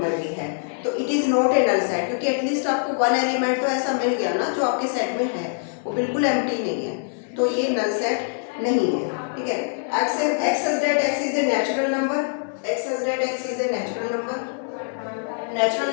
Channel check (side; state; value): right; silent; digital silence